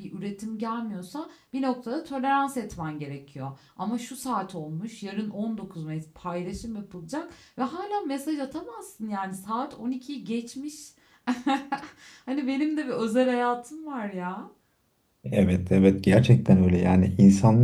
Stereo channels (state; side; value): identical; both; correlation 1.00